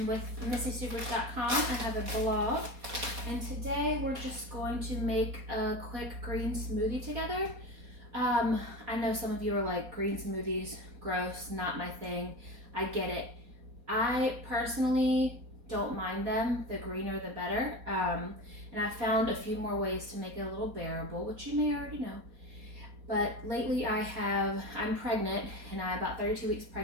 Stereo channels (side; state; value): left; late; 4.2 ms